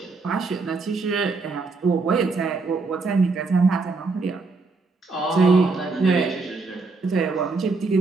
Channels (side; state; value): left; quieter; 4.0 dB